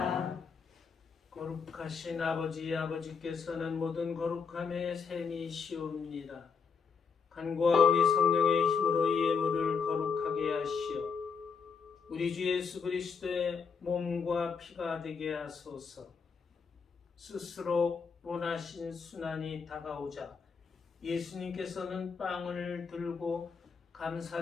거룩하신 아버지께서는 모든 거룩함의 샘이시옵니다. 간구와 우리 성령의 힘으로 이 예물을 거룩하게 하시어 우리 주 예수 그리스도의 몸과 피가 되게 하소서. 스스로 원하신 순환이 다가오자 예수님께서는 빵을 들고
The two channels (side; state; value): right; quieter; 5.7 dB